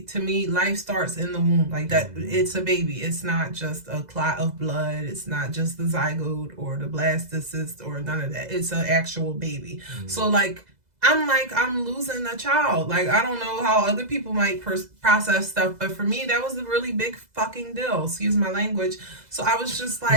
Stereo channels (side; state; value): left; late; 2.0 ms